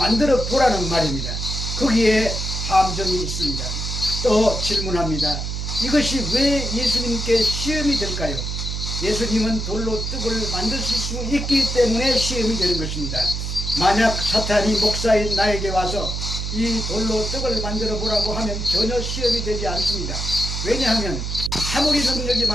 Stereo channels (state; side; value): noise; right; hum, 4 dB below the sound